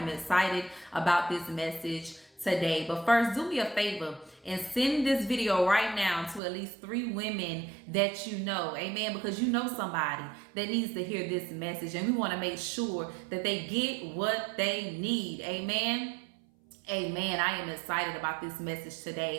excited about this message today. But first, do me a favor and send this video right now to at least 3 women that you know. Amen. Because you know somebody that needs to hear this message, and we want to make sure that they get what they need. Amen. Amen. I am excited about this message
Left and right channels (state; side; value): drops out; left; at 6.4 s